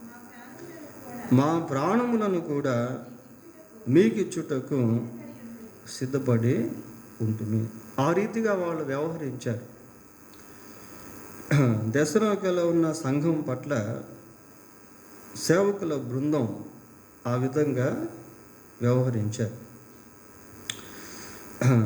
మా ప్రాణములను కూడా మీకిచ్చుటకు సిద్ధపడి ఉంటుంది. ఆ రీతిగా వాళ్ళు వ్యవహరించారు. దెస్సలోనికలో ఉన్న సంఘం పట్ల సేవకుల బృందం ఆ విధంగా వ్యవహరించారు.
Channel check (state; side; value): identical; both; correlation 1.00